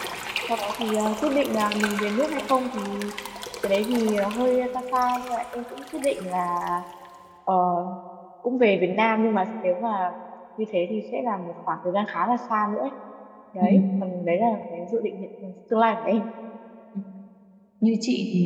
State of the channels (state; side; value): identical; both; correlation 1.00